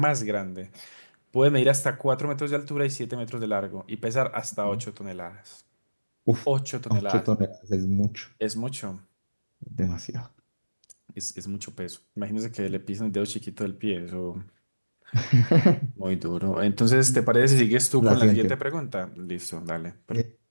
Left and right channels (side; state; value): both; inverted; correlation -1.00